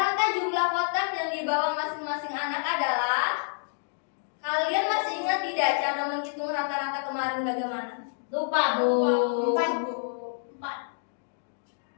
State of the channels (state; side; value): silent; right; digital silence